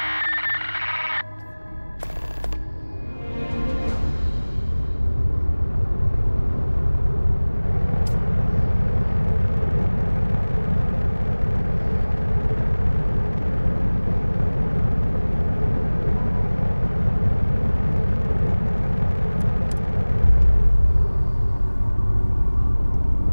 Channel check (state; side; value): inverted; both; correlation -1.00